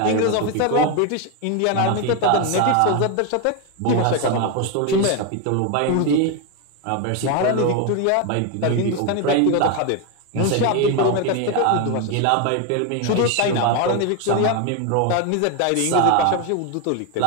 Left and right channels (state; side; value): different; both; correlation 0.01